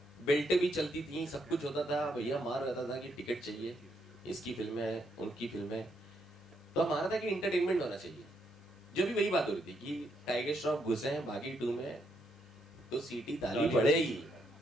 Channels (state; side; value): normal; both; correlation 0.76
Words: बेल्टें भी चलती थी, सब कुछ होता था, भैया मार रहता था कि टिकट चाहिए, इसकी फिल्म है, उनकी फिल्म है, तो हमारा था कि इंटरटेनमेंट होना चाहिए। जो भी वही बात हो रही थी कि टाइगर श्रॉफ घुसे हैं बागी 2 में तो सीटी ताली पड़ेगी,